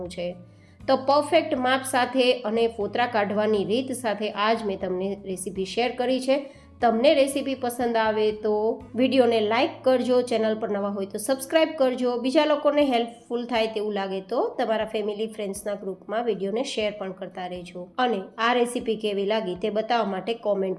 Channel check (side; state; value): both; identical; correlation 1.00